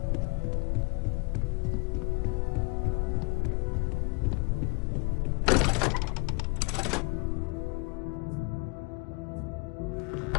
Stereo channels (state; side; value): quieter; right; 31.6 dB